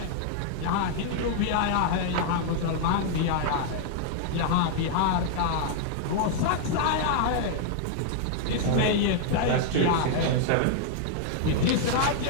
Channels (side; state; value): both; different; correlation 0.00